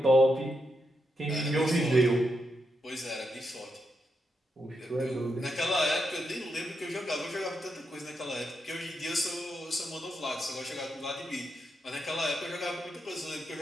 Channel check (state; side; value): normal; both; correlation 0.84